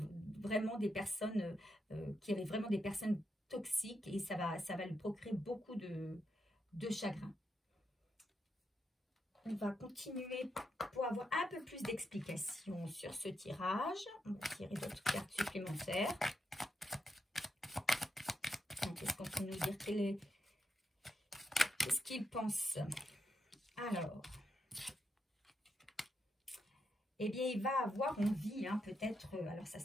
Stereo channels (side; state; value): both; normal; correlation 0.83